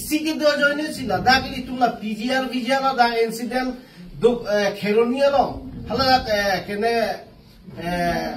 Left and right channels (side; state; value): both; identical; correlation 1.00